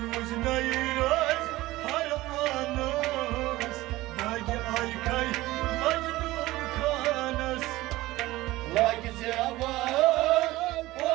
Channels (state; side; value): quieter; left; 18.0 dB